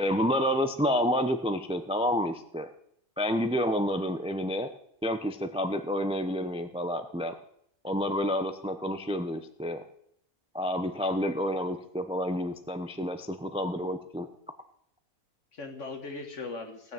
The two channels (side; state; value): both; normal; correlation 0.51